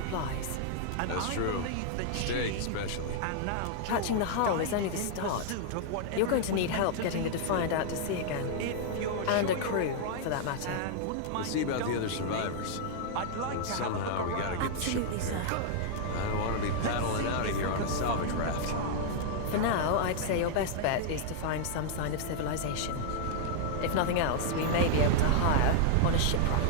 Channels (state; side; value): different; both; correlation -0.01